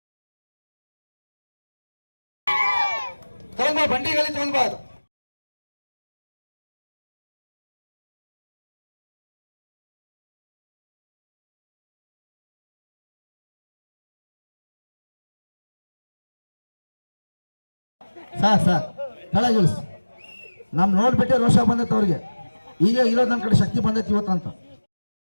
ಬಂಡಿಗಳಲ್ಲಿ ತಗೊಂಡ್ಬಾರ್ದು. ಸಾಕ್ ಕೆಳಗಿಳಿಸಿ. ನಮ್ ನೋಡ್ಬಿಟ್ಟೆ ರೋಷ ಬಂದೈತೆ ಅವ್ರಿಗೆ. ಈಗ ಇರೋದು ನನ್ನ ಕಡೆ ಶಕ್ತಿ ಬಂದೈತಿ ಇವತ್ತಂತ.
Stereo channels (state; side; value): inverted; both; correlation -1.00